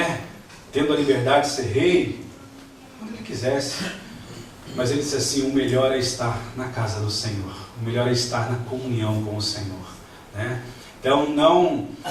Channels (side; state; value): both; identical; correlation 1.00